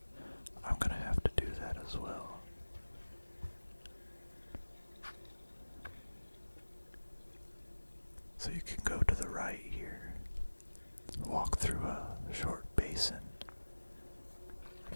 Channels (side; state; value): both; inverted; correlation -1.00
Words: I'm gonna have to do that as well. So you can go to the right here, walk through a short basin,